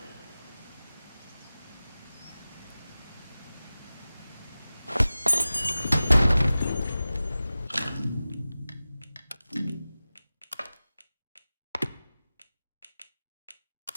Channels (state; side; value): inverted; both; correlation -0.96